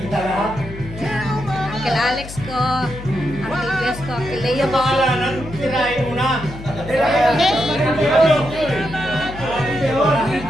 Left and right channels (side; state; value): left; noise; hum, 13 dB below the sound